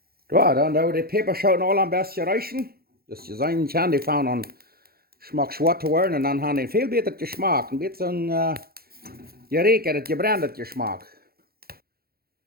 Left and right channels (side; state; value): left; late; 0.44 ms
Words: Ja, dann da die Peperschoten alle am besten reichen. Das ist sein kann, die fahren an Geschmack schwarz zu werden und dann haben die viel besser Geschmack. Ein bisschen geräkert, gebrannt Geschmack.